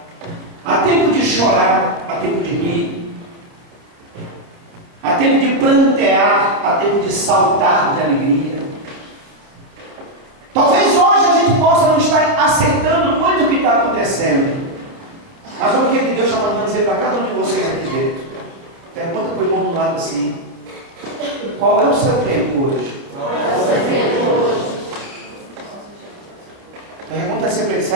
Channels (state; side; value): late; left; 29 ms